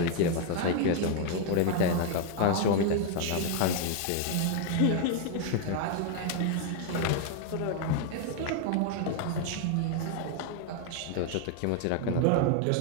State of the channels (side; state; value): both; different; correlation 0.01